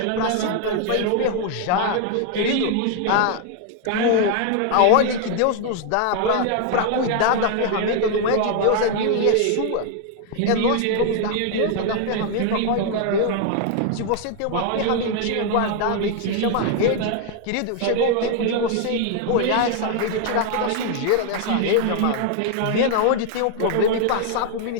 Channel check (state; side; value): different; both; correlation 0.00